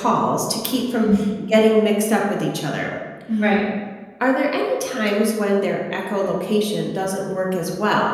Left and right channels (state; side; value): identical; both; correlation 1.00